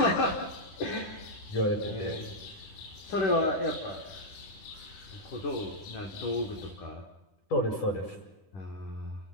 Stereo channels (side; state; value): right; late; 10 ms